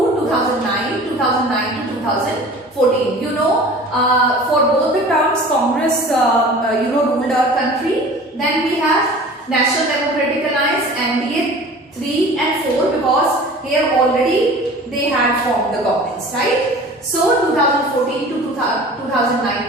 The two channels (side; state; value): both; normal; correlation 0.42